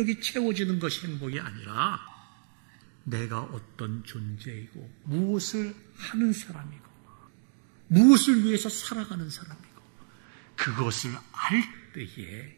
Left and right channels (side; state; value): left; silent; digital silence